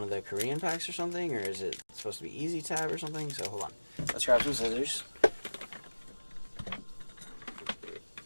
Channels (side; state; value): both; inverted; correlation -1.00